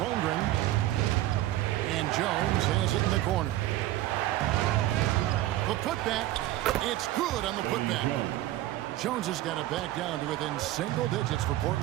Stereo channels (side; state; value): left; quieter; 15.1 dB